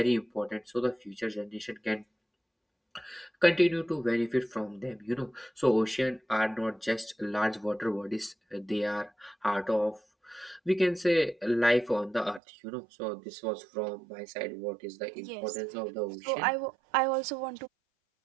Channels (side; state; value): left; drops out; at 12.4 s